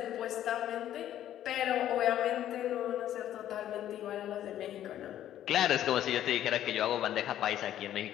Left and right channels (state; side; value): quieter; right; 11.7 dB